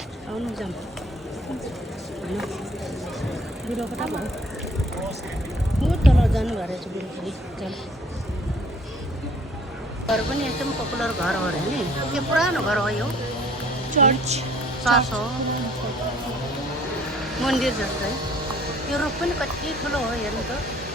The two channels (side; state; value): both; normal; correlation 0.57